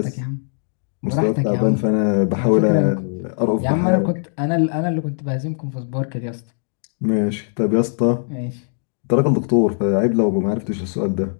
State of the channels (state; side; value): silent; right; digital silence